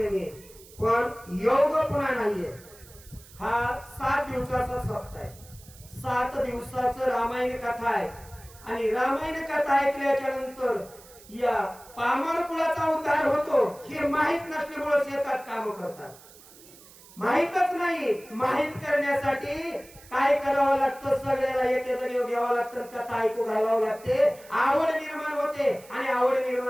पण योग पुन्हा नाहीये. हा 7 दिवसाचा सप्ताह आहे. 7 दिवसाचं रामायण कथा आहे आणि रामायण कथा ऐकल्याच्या नंतर या पामर कुळाचा उद्धार होतो हे माहित नसल्यामुळे शेतात काम करतात. माहितच नाही. माहित करण्यासाठी काय करावं लागतं, सगळ्याला एक घ्यावं लागतं, कथा ऐकू घालावं लागते, आवड निर्माण होते आणि आवड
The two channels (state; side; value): noise; right; hiss, 22 dB below the sound